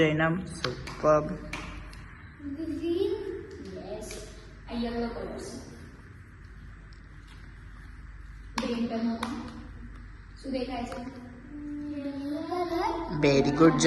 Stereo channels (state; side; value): identical; both; correlation 1.00